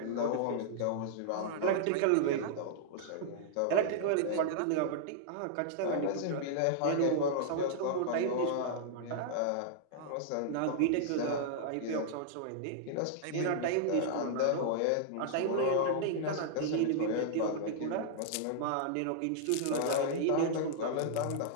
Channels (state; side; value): different; both; correlation -0.01